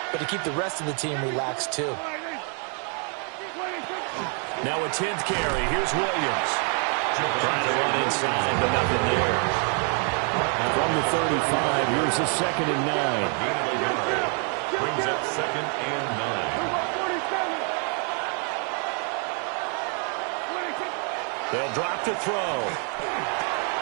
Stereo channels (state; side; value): quieter; left; 39.8 dB